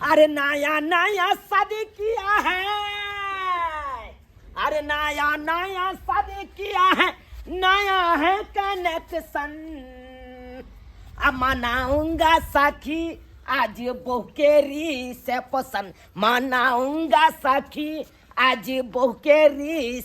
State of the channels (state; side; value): identical; both; correlation 1.00